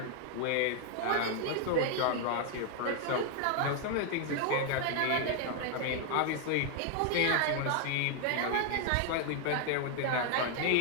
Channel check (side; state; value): both; different; correlation 0.00